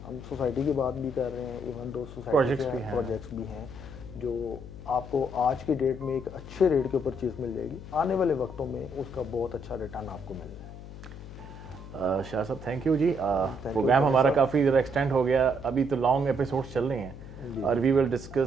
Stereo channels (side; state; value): left; noise; hum, 13 dB below the sound